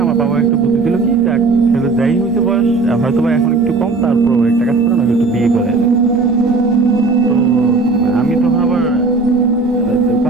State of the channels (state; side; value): quieter; left; 3.8 dB